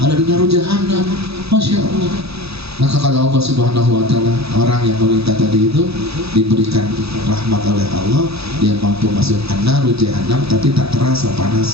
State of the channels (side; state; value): left; late; 0.78 ms